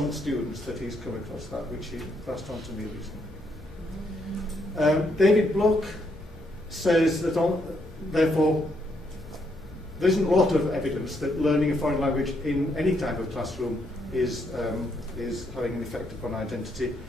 students that he's come across that, which he passed on to me recently. David Bloch says that, therefore, there isn't a lot of evidence that learning a foreign language in any type of classroom is having an effect upon identity.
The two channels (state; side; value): normal; both; correlation 0.75